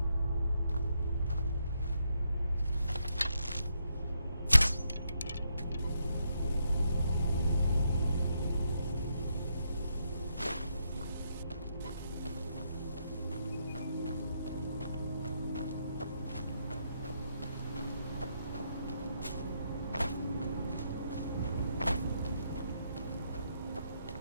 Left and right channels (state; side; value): inverted; both; correlation -0.78